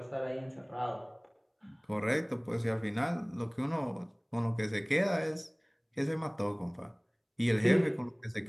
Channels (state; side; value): identical; both; correlation 1.00